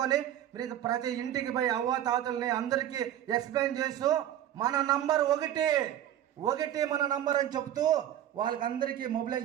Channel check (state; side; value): quieter; left; 11.5 dB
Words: మీరు ప్రతి ఇంటికి పోయి అవ్వ తాతల్ని అందరికీ ఎక్స్ప్లెయిన్ చేస్తూ మన నంబర్ ఒకటి మన నంబర్ అని చెప్తూ వాళ్ళకి అందరికీ